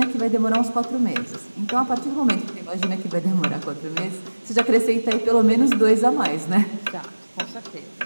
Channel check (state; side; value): inverted; both; correlation -1.00